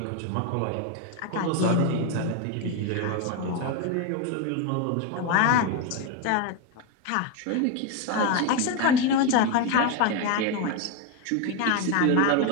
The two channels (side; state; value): both; different; correlation 0.02